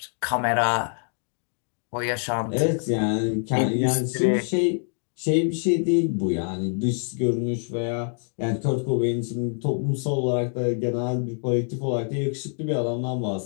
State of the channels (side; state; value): right; silent; 55 dB below the other